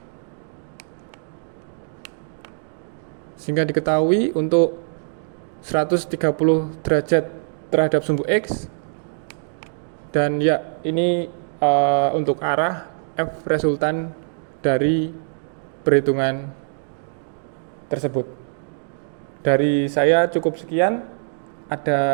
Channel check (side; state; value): left; silent; digital silence